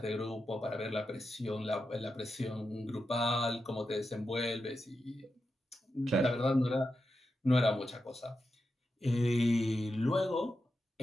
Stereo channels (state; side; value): normal; both; correlation 0.88